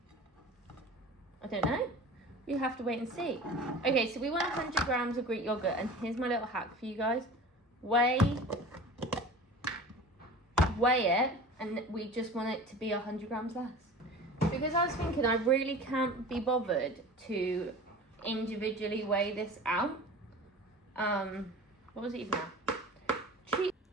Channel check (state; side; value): normal; both; correlation 0.38